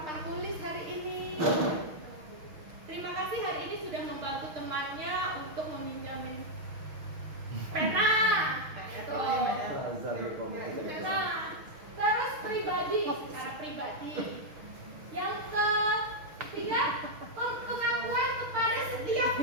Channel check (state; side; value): late; left; 6.3 ms